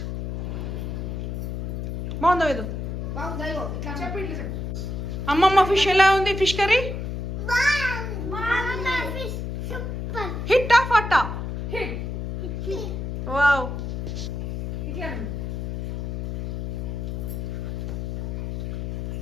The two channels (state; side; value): noise; left; hum, 4 dB below the sound